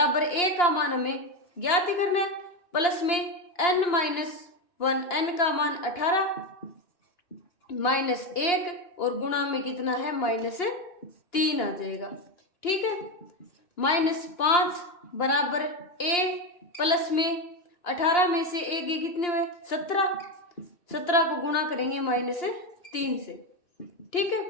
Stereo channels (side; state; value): right; late; 2.8 ms